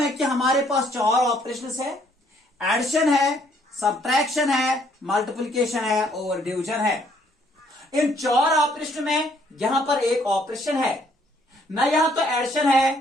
कि हमारे पास चार ऑपरेशंस है, एडिशन है, सब्ट्रैक्शन है, मल्टीप्लिकेशन है और डिवीजन है। इन चार ऑपरेशन में यहां पर एक ऑपरेशन है, न यहां तो एडिशन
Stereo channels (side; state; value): both; normal; correlation 0.66